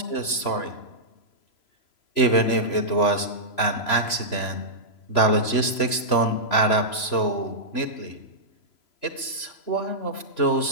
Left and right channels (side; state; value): right; late; 3.0 ms